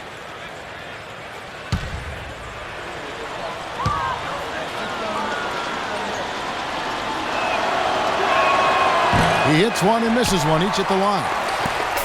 He hits one and misses one, each at the line.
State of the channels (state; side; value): identical; both; correlation 1.00